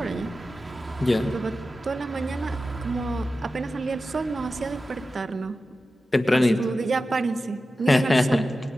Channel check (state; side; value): normal; both; correlation 0.93